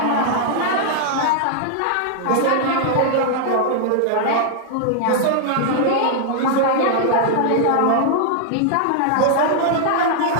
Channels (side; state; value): both; different; correlation -0.01